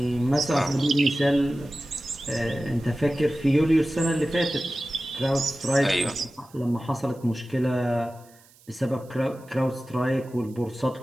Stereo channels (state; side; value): noise; right; hiss, 28 dB below the sound